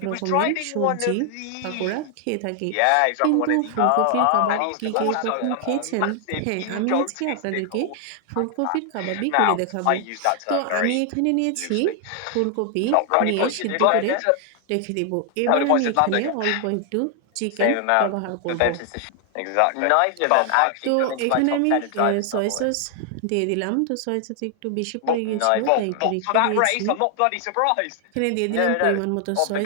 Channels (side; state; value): both; different; correlation 0.00